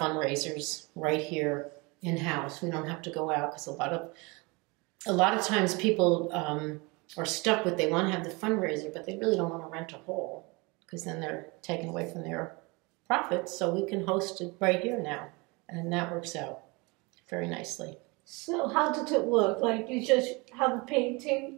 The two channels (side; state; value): left; quieter; 27.0 dB